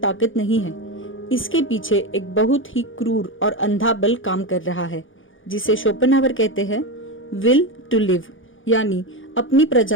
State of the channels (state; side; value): late; right; 0.57 ms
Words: नहीं है। इसके पीछे एक बहुत ही क्रूर और अंधा बल काम कर रहा है जिसे शोपेनहावर कहते हैं विल टू लिव यानी अपनी